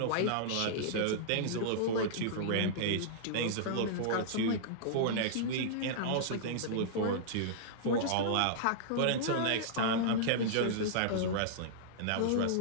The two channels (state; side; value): different; both; correlation -0.02